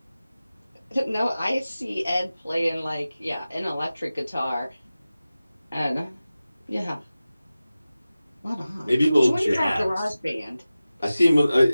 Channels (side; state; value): both; inverted; correlation -0.96